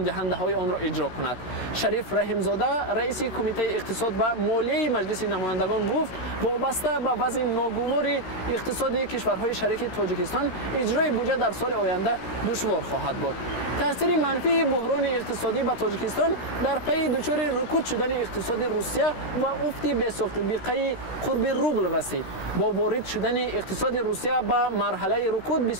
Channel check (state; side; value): late; right; 16 ms